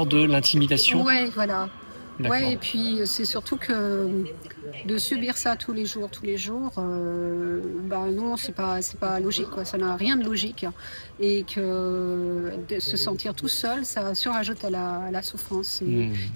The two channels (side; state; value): both; inverted; correlation -1.00